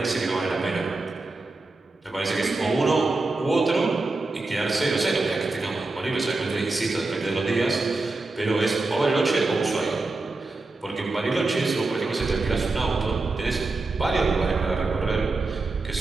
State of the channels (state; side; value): quieter; left; 3.3 dB